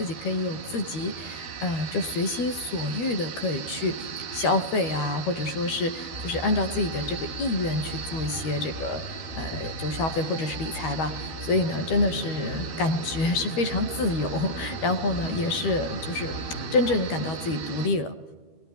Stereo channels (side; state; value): right; late; 13 ms